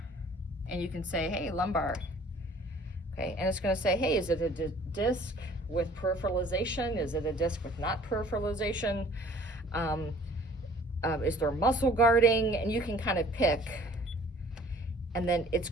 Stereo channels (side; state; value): both; normal; correlation 0.53